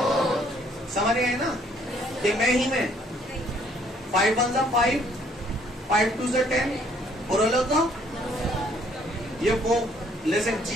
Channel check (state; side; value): normal; both; correlation 0.63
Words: समझ गए ना। ये मैं ही में 5 1 5, 5 2 से 10, बुरा लगा। ये वो लेकिन